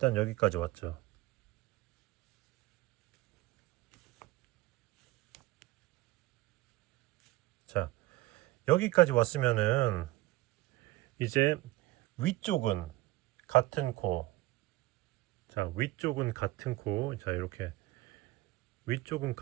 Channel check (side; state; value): left; quieter; 18.3 dB